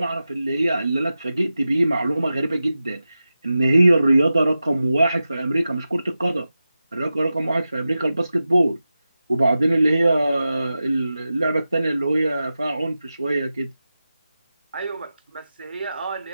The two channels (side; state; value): both; inverted; correlation -0.93